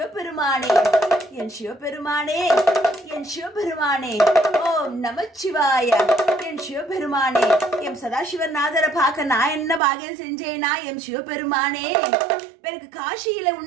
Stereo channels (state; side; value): drops out; left; at 9.8 s